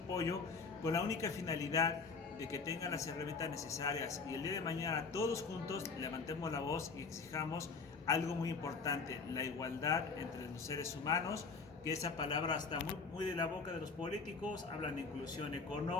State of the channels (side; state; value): right; quieter; 4.7 dB